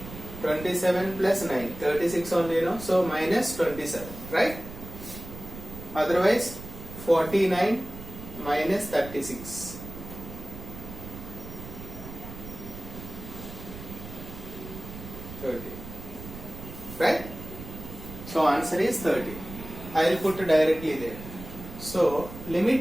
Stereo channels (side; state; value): right; noise; rumble, 12 dB below the sound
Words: plus 9, 36 only, no? So minus 27, right? Otherwise 49 minus 36. 30. Right? So answer is 30. I will put directly there. So